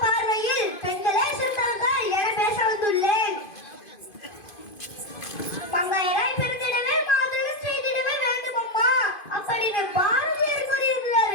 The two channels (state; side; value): late; right; 2.5 ms